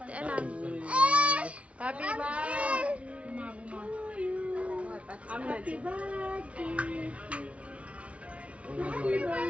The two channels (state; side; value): late; left; 0.063 ms